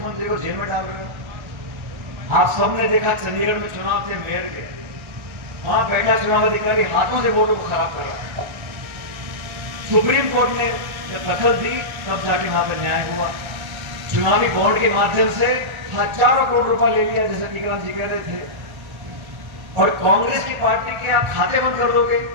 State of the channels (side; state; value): left; late; 1.4 ms